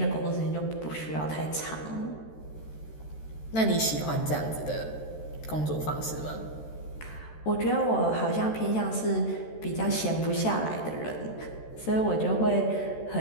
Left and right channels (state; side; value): late; right; 13 ms